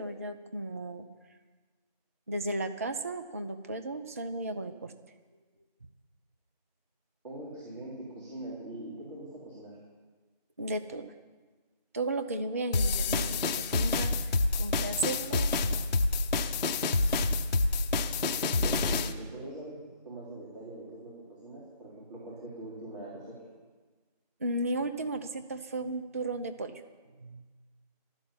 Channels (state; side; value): inverted; both; correlation -0.61